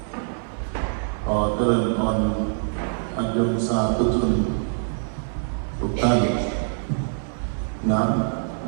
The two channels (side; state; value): left; silent; 56 dB below the other